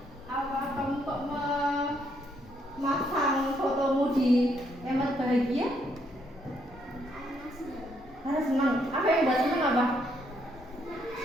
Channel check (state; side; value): normal; both; correlation 0.73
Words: apa kamu kok memasang fotomu di emot bahagia? Karena senang. Apa yang buat senang apa?